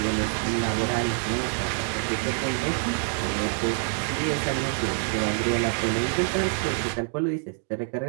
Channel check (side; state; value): left; silent; 61 dB below the other